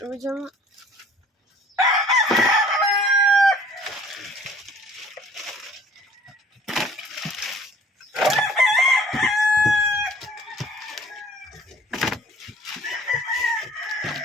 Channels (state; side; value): normal; both; correlation 0.53